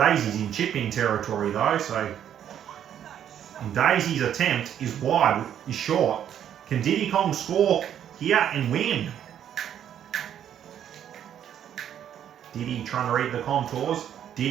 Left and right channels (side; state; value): left; quieter; 9.8 dB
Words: in chip-in territory though, so... And Daisy's attempt is wide, is short. Can Diddy Kong score here and win? Diddy trying to read the contours.